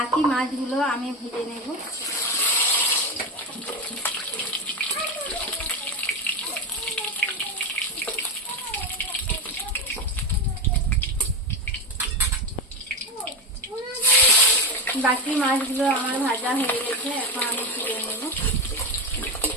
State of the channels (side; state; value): both; normal; correlation 0.17